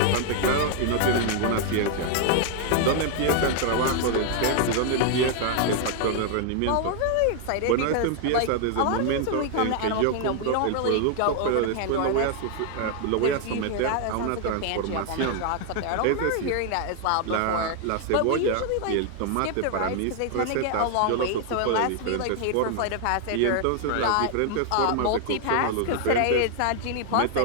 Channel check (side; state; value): both; different; correlation 0.00